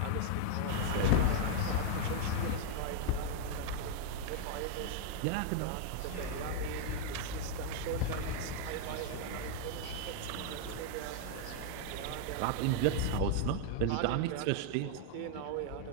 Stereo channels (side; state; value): both; different; correlation 0.00